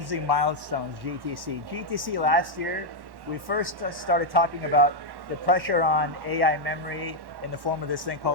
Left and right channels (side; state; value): left; late; 1.1 ms